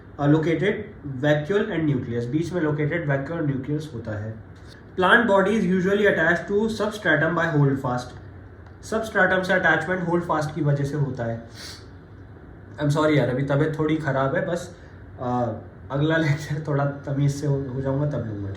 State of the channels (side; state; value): both; identical; correlation 1.00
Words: located vacuole and nucleus. बीच में located vacuole और nucleus होता है। Plant body is usually attached to substratum by holdfast. Substratum से attachment holdfast की वजह से होता है। I'm sorry यार, अभी तबीयत थोड़ी ख़राब है, बस अगला लेक्चर थोड़ा तमीज़ से हो जाऊँगा तब लूँगा,